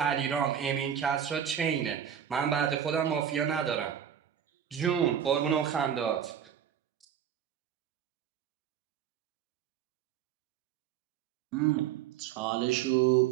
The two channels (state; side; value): quieter; left; 9.1 dB